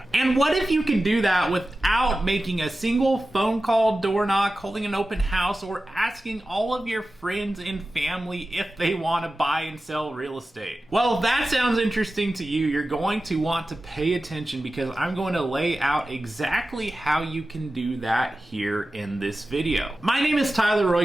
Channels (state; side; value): normal; both; correlation 0.95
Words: And what if you could do that without making a single phone call, door knock, holding an open house, or asking all of your friends and family if they want to buy and sell real estate? Well, if that sounds interesting to you, you're going to want to pay attention, because I'm going to lay out exactly how you can do that here in this video. My name is Tyler